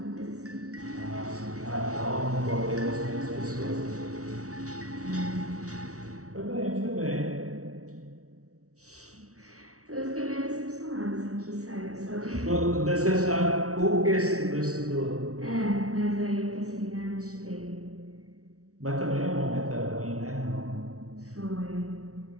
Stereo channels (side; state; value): left; late; 0.65 ms